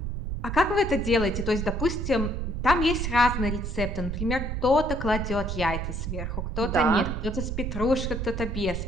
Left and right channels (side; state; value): right; noise; rumble, 3 dB below the sound